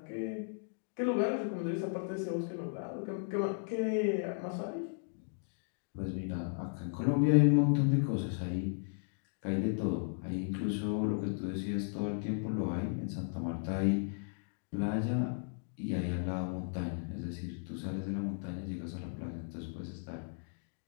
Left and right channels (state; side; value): silent; right; digital silence